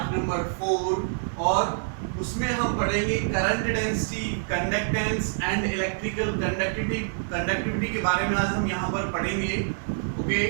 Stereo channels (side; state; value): left; silent; digital silence